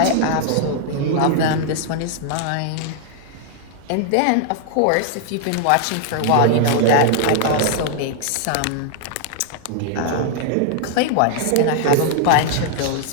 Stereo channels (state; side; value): different; both; correlation 0.00